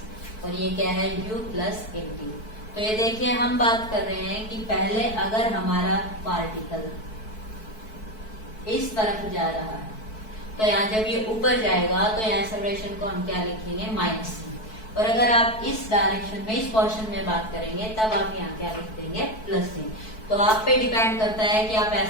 और ये क्या है u प्लस at। तो ये देखिए हम बात कर रहे हैं कि पहले अगर हमारा पार्टिकल इस तरफ जा रहा है तो यहाँ जब ये ऊपर जाएगा तो यहाँ एक्सेलरेशन को हम क्या लिखेंगे, माइनस c। और अगर आप इस डायरेक्शन में, इस पोर्शन में बात करेंगे तब आप यहाँ क्या लिख देंगे, प्लस c। तो आप पे डिपेंड करता है कि आप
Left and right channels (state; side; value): late; right; 4.6 ms